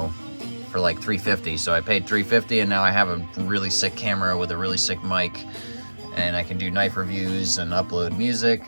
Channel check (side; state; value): both; inverted; correlation -1.00